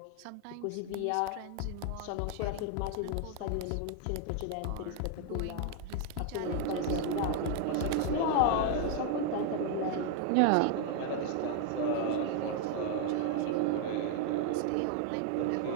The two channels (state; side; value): different; both; correlation 0.00